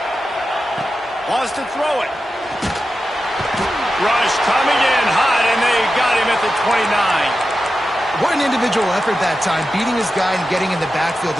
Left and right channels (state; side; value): normal; both; correlation 0.91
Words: Wants to throw it. Rush coming in hot, and they got him at the 29. What an individual effort that time, beating his guy and getting in the backfield